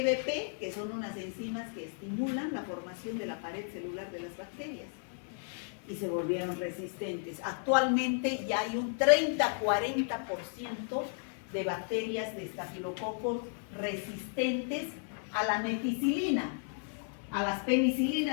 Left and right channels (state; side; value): silent; right; 55 dB below the other